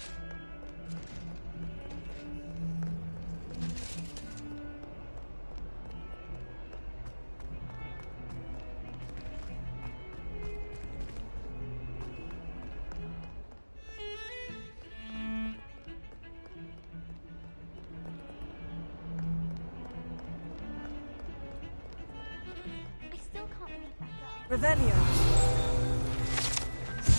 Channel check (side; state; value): both; inverted; correlation -1.00